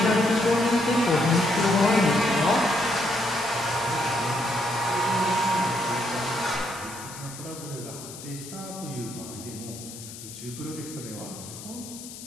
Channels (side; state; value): left; noise; hiss, 13 dB below the sound